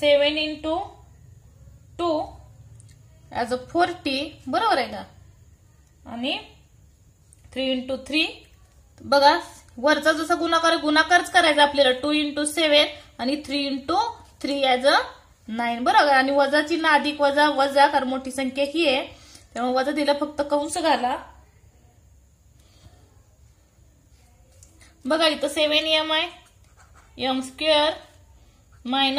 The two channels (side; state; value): both; identical; correlation 1.00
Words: इंटू 2 ॲज अ 40. बरोबर आहे का, आणि 3 इंटू 3. बघा वरचा जसा गुणाकारच करायचा आपल्याला. 2 इंटू 7 आणि 3 इंटू 3 ॲज अ 9. बरोबर, आणि वजा चिन्ह अधिक वजा वजा, कारण मोठी संख्या ही आहे त्यामुळे वजा दिला, फक्त कंस घाला. बघा इथं 7m आहे, m square